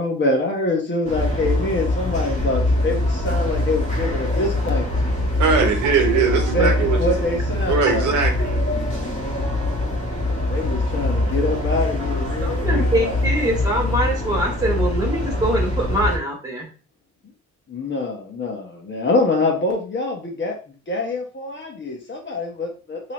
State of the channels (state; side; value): normal; both; correlation 0.45